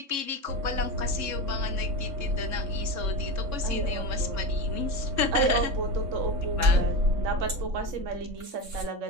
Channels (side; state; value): left; late; 3.6 ms